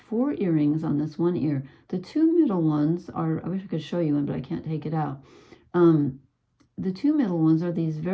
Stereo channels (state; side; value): identical; both; correlation 1.00